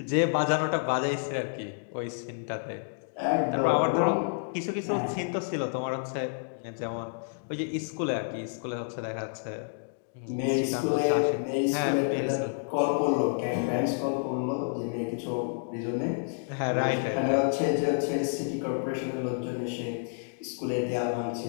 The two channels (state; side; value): silent; right; digital silence